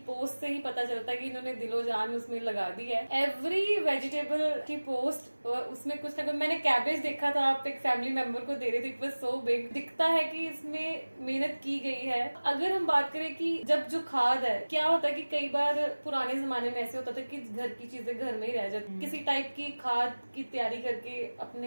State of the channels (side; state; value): both; inverted; correlation -1.00